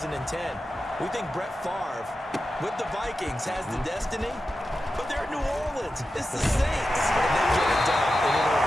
We think Brett Favre with the Vikings has the destiny, but they're in New Orleans. It's the Saints. And they get it done. And in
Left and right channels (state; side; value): normal; both; correlation 0.92